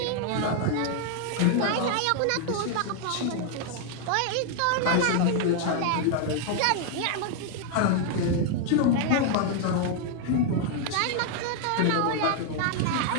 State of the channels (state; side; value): different; both; correlation 0.00